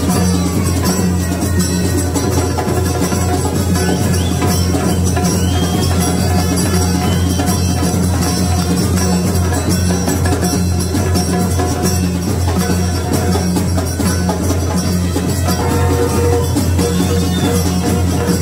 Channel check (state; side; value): noise; right; hum, 24 dB below the sound